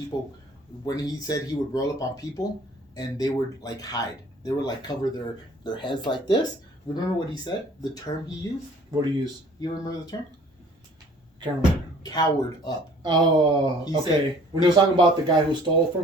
when he said he would roll up on people and they would like hide. They would like cover their heads like this. Remember what he said? The term he used? What do you use? You remember the term? Can't remember. Cowered up. Oh, He okay. said- When he was talking about the guy who stole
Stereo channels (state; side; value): normal; both; correlation 0.53